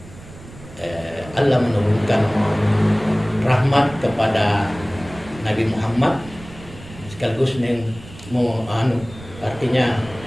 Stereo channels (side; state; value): right; noise; rumble, 18 dB below the sound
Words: Allah menurunkan rahmat kepada Nabi Muhammad sekaligus artinya